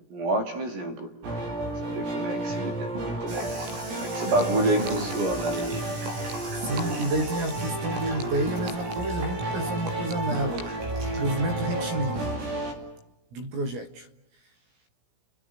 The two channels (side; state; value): left; late; 17 ms